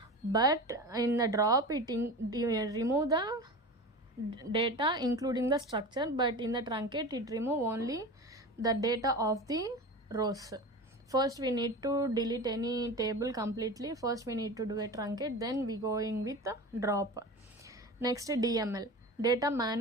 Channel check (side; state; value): both; normal; correlation 0.30